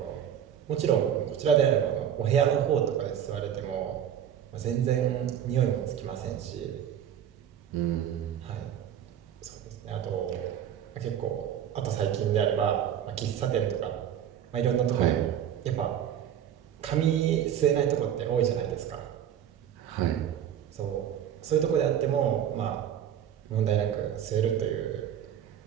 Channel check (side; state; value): left; quieter; 9.6 dB